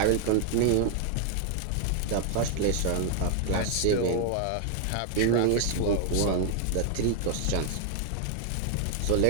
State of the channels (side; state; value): both; different; correlation 0.00